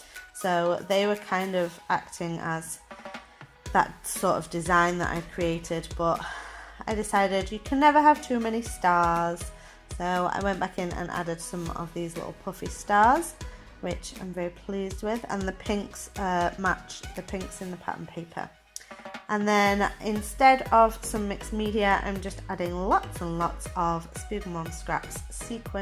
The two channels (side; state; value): both; identical; correlation 1.00